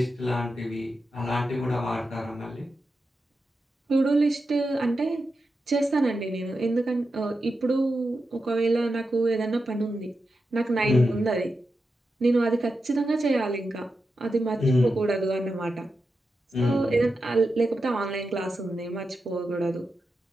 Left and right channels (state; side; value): normal; both; correlation 0.89